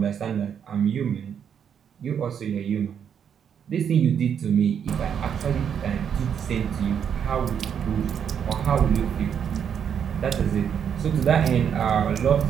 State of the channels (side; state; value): left; quieter; 8.0 dB